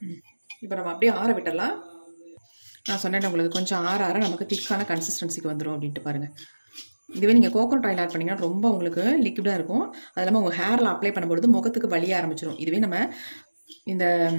இப்போ நம்ம அப்படியே ஆற விட்டுடலாம். நான் சொன்னேன் உங்களுக்கு கொஞ்சம் ஆற நமக்கு திக்கான கன்சிஸ்டன்சிக்கு வந்துடும் அப்படின்ட்டு பாருங்கள். இதுவே நீங்கள் கோகோனட் ஆயில் ஆட் பண்ணிங்கன்னா ரொம்ப உங்களுக்கு லிக்விடாக இருக்கும். அது இல்லாமல் உங்கள் ஹேரில் அப்ளை பண்ணும்பொழுது முகத்துக்கு வலிய ஆரம்பிச்சிடும். இதுவே நம்ம இந்த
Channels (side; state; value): both; inverted; correlation -1.00